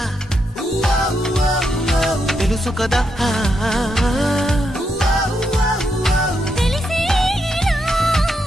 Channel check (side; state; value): both; normal; correlation 0.81